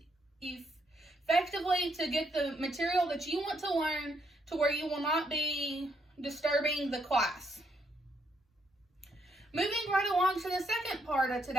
effectively to get the material that you want to learn to where you will not be disturbing the class. Moving right along to the second part of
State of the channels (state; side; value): normal; both; correlation 0.75